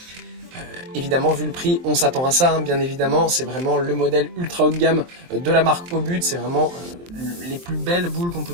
Évidemment, vu le prix, on s'attend à ça, bien évidemment. C'est vraiment le modèle ultra haut de gamme de la marque au but. C'est vraiment les plus belles boules qu'on peut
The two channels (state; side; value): late; left; 23 ms